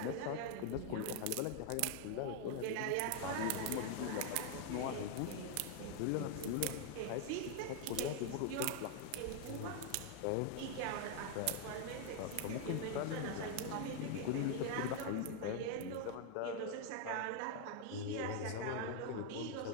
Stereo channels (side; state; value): both; different; correlation 0.01